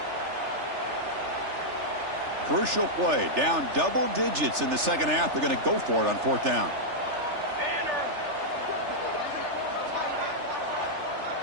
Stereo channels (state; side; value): late; left; 3.4 ms